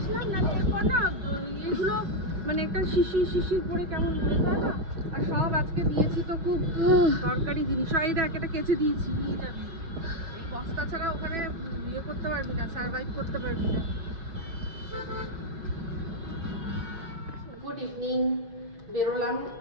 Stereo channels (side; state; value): left; late; 6.1 ms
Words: না, এরপর না এগুলো মানে একটা শিশির পরে কেমন হয়ে যায় না। আর সব আজকে দিয়েছি তো খুব দরকারি জিনিস, এই দেখ এটা কেচে দিয়েছি, নিয়ে যাবি। এই বস্তা ছাড়া ওখানে ইয়ে করতে পারবি না, সার্ভাইভ করতে পারবি না। গুড ইভিনিং, বেরোলাম।